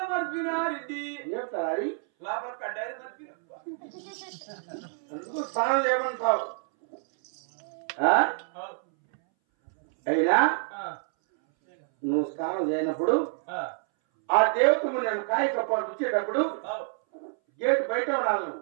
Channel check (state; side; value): silent; left; 59 dB below the other